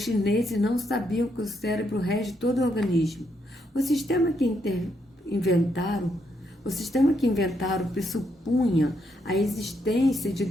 chineses não sabiam que o cérebro rege todo o organismo. O sistema que inventaram pressupunha a existência de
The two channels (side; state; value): both; normal; correlation 0.77